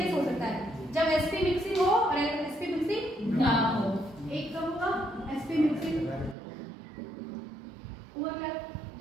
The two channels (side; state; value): left; drops out; at 6.4 s